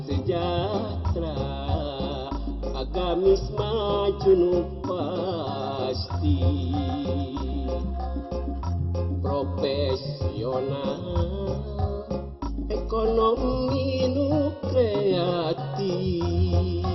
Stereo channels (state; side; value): identical; both; correlation 1.00